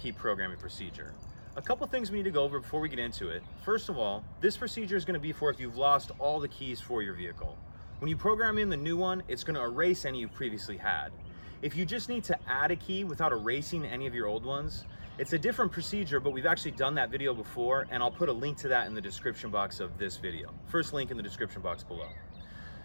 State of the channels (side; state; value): both; inverted; correlation -1.00